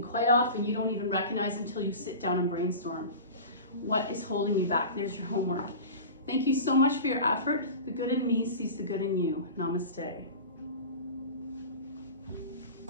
quite often you don't even recognize until you sit down and brainstorm. What is holding you back? There's your homework. Thank you so much for your effort. The good in me sees the good in you. Namaste.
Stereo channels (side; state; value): both; inverted; correlation -0.33